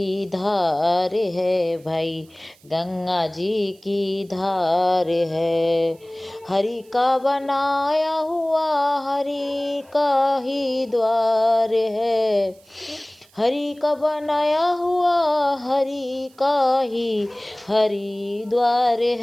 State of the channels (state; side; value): noise; right; hiss, 30 dB below the sound